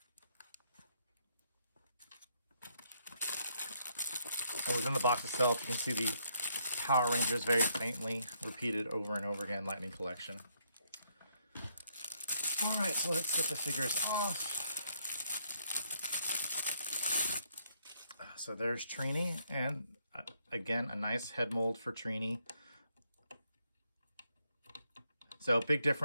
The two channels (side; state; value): both; inverted; correlation -0.72